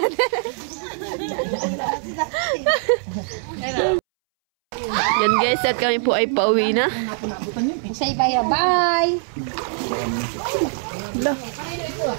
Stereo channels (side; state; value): left; silent; 64 dB below the other